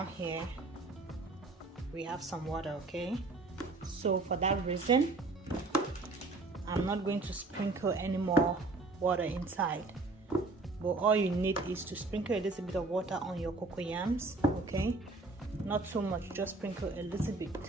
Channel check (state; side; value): quieter; left; 3.4 dB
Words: here, we have some water. Okay, so for that reason, I'm not going to sprinkle any more water inside, but all you need is to sprinkle a little bit of water on your cocoa yams. Okay, not too much, just sprinkle a little bit,